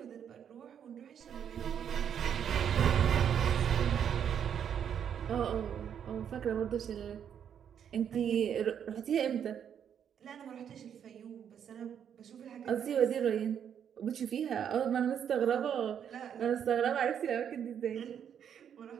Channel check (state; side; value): quieter; left; 8.5 dB